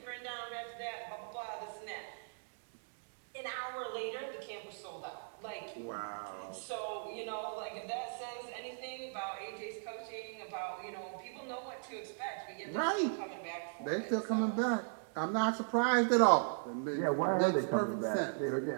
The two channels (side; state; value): left; silent; digital silence